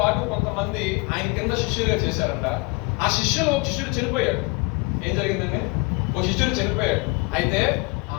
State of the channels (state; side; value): quieter; right; 27.7 dB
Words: కొంతమంది ఆయన కింద శిష్యులుగా చేశారంట. ఆ శిష్యులు ఒక శిష్యుడు చనిపోయాడు. ఏం జరిగిందండి, ఒక శిష్యుడు చనిపోయాడు. అయితే